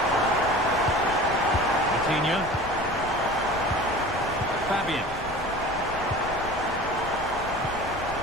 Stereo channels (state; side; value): noise; left; rumble, 14 dB below the sound